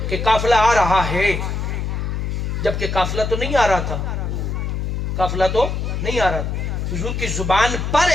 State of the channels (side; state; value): left; noise; hum, 2 dB below the sound